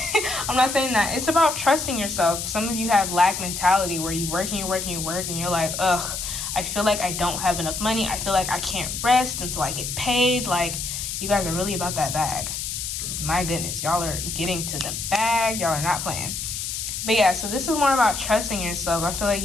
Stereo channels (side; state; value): left; noise; hiss, 4 dB below the sound